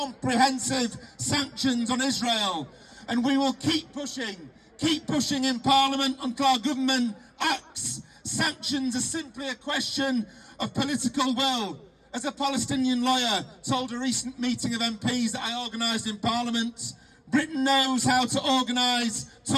sanctions on Israel. And we will keep pushing in Parliament until our government acts. Sanctions are simply a question of political will. As a Palestinian lawyer told a recent meeting of MPs that I organised in Parliament, Britain knows how to organise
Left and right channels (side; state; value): both; identical; correlation 1.00